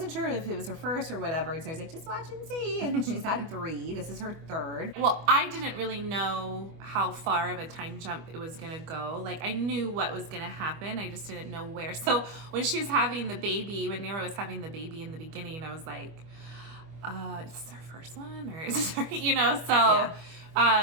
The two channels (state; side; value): late; left; 25 ms